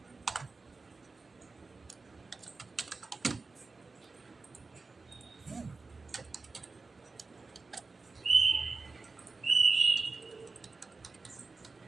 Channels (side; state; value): left; quieter; 4.0 dB